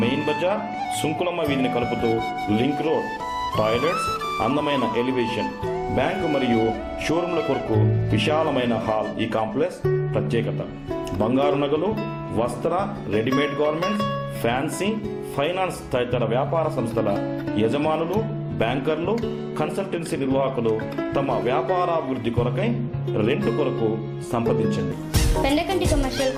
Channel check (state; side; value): identical; both; correlation 1.00